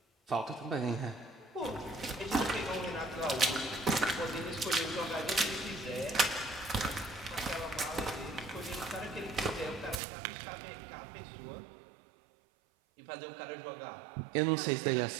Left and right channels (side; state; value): left; drops out; at 10.0 s